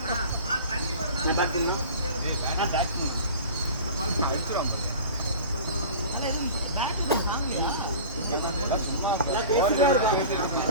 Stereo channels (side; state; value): both; inverted; correlation -0.38